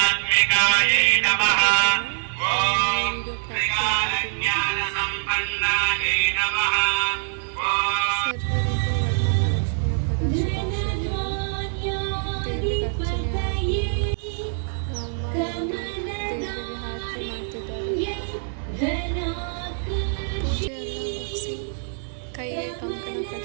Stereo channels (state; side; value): silent; left; 62 dB below the other